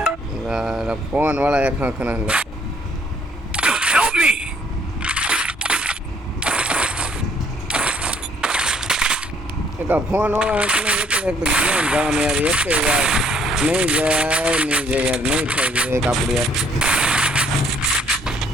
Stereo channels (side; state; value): both; normal; correlation 0.63